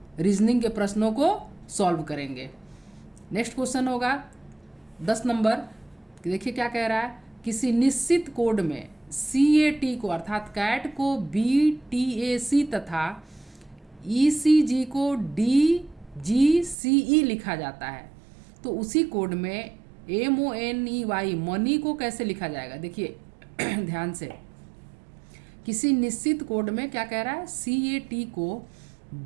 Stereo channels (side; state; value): left; drops out; at 16.8 s